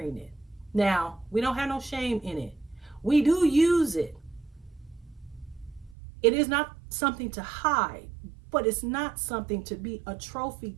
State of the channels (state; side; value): drops out; left; at 6.0 s